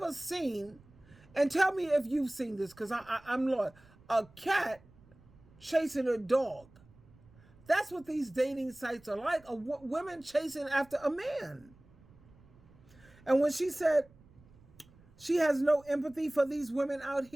seen, and tell me if you've seen this, because I'm lost, a cat chasing a dog. That's what these dating sites are like, women chasing after a man. And when she said she has no empathy for these women out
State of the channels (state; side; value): noise; right; rumble, 26 dB below the sound